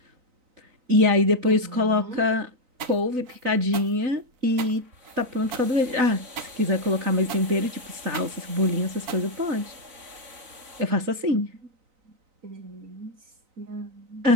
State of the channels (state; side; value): late; left; 3.9 ms